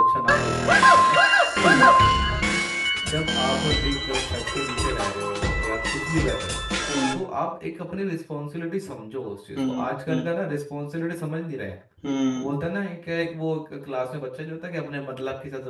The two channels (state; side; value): identical; both; correlation 1.00